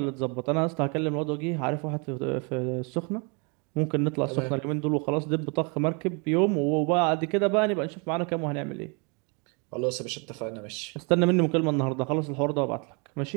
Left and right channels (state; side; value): quieter; left; 33.7 dB